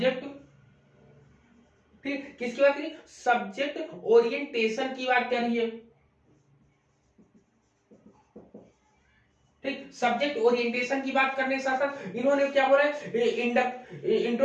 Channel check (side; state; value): both; identical; correlation 1.00